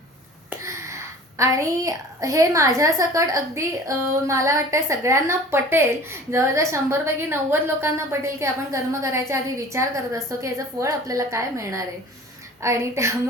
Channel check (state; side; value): normal; both; correlation 0.44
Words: आणि हे माझ्यासकट अगदी मला वाटतं सगळ्यांना पटेल. जवळजवळ 100पैकी 90 लोकांना पटेल की आपण कर्म करायच्या आधी विचार करत असतो की याचं फळ आपल्याला काय मिळणार आहे. आणि